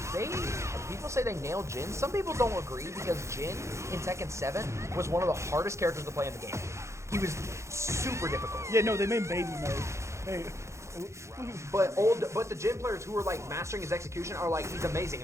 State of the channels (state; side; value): late; left; 0.14 ms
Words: people say they nailed Jin. Some people don't agree because Jin in Tekken 7 was one of the hardest characters to play in the game. He was super difficult. Yeah, no, they made baby mode. Hey. But the Jin players who are like mastering his execution are like, he's amazing